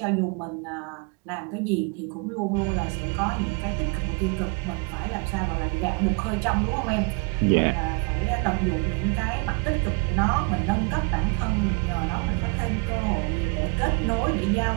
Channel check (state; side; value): quieter; left; 31.5 dB